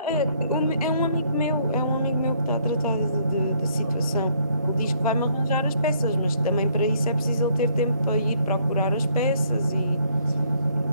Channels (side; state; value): both; inverted; correlation -0.66